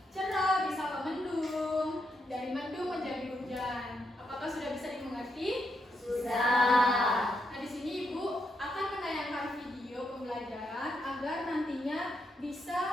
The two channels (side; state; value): both; normal; correlation 0.80